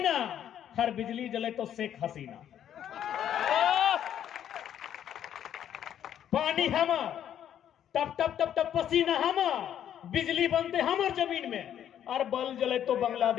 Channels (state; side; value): quieter; right; 10.1 dB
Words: हर बिजली जले तो शेख हसीना। पानी हमर, टप टप टप टप पसीना हमर, बिजली बनते हमर जमीन में, और बल जले तो